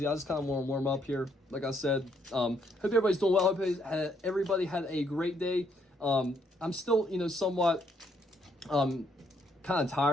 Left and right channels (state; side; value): normal; both; correlation 0.71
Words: I just kind of want to warm up here. Like I said, hope everybody's doing well. Hope everybody had a great day. I'm still, somewhat kind of